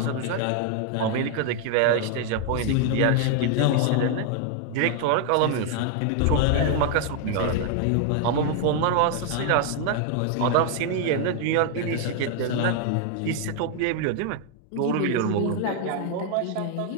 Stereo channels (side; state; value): both; different; correlation 0.00